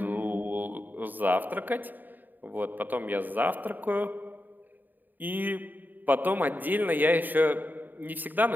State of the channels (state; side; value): late; left; 0.088 ms